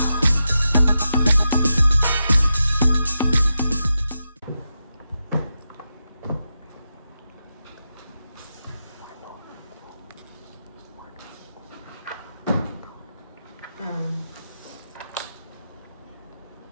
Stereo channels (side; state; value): both; inverted; correlation -0.88